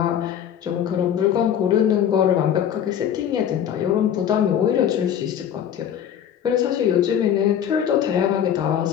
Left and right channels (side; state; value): right; quieter; 9.4 dB